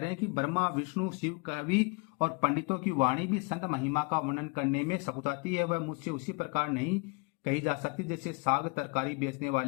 हैं कि ब्रह्मा, विष्णु, शिव, कवि और पंडितों की वाणी भी संत महिमा का वर्णन करने में सकुचाती है। वह मुझसे उसी प्रकार नहीं कही जा सकती जैसे साग तरकारी बेचने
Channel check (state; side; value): quieter; right; 29.6 dB